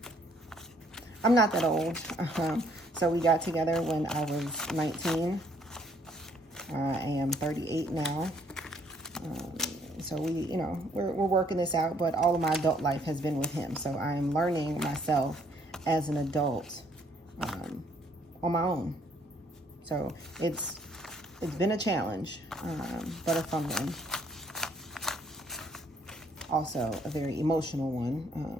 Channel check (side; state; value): both; normal; correlation 0.65